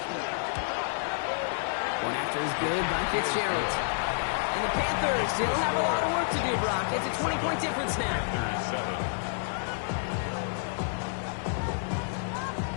One after is good by Fitzgerald. And the Panthers still have a lot of work to do, Brock. It's a 20-point difference now. Panthers 7.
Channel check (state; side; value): silent; right; digital silence